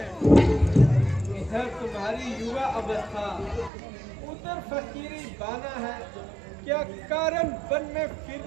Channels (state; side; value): drops out; left; at 3.7 s